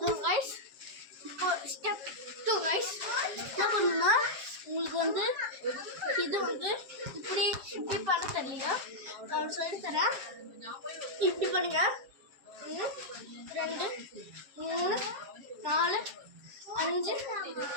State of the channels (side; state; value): left; late; 7.5 ms